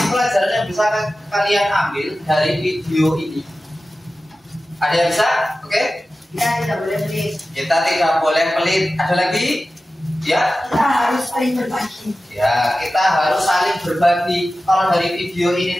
pelajaran yang bisa kalian ambil dari video ini? Ada yang bisa? Oke? Kita tidak boleh pelit. Kita tidak boleh pelit. Ada lagi? Ya? Kita harus saling berbagi. Ya, kita harus saling berbagi. Kalau dari video ini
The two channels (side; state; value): both; normal; correlation 0.95